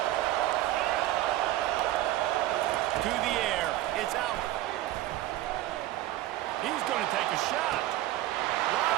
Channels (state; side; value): quieter; left; 15.2 dB